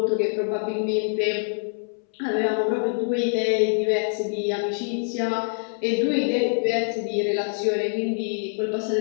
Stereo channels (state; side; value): silent; right; 62 dB below the other